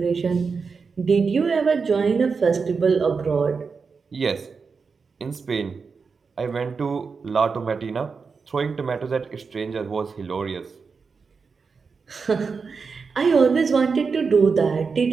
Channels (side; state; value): left; quieter; 5.1 dB